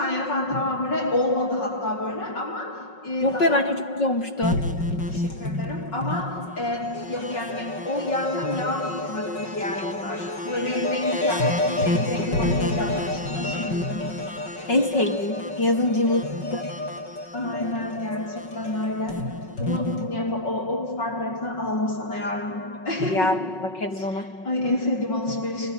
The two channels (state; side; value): late; right; 5.4 ms